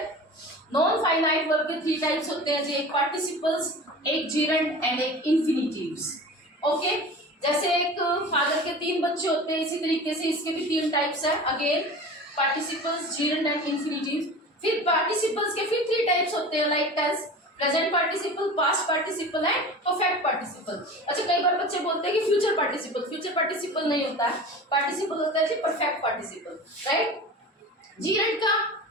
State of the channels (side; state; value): both; normal; correlation 0.35